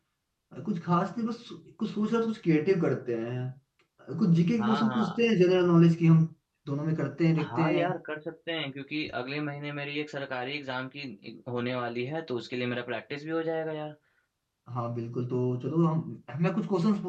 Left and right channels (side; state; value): both; identical; correlation 1.00